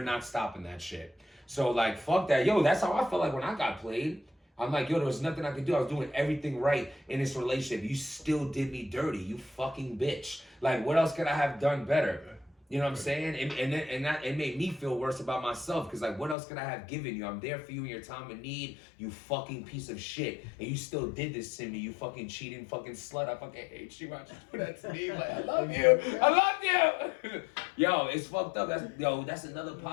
not stopping that shit. So like, fuck that. Yo, that's how I felt like when I got played. I'm like, yo, there was nothing I could do. I was doing everything right in this relationship. You still did me dirty, you fucking bitch. Like, what else could I have done better? You know what I'm saying? And that it made me feel worse about myself because like, what else could I have given you? I'm there for you in your time of need, you fucking piece of shit. And you still did this to me, you fucking cheating fucking slut. I fucking hate you. Why you do that to me? Like, I love you. I love you. Yo, it's fucked up. That's another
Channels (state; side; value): drops out; right; at 16.4 s